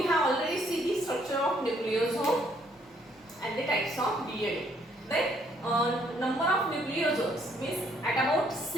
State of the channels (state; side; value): normal; both; correlation 0.67